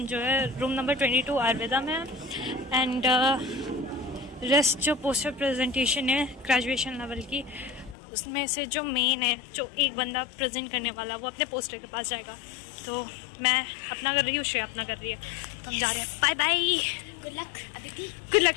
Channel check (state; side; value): drops out; right; at 8.0 s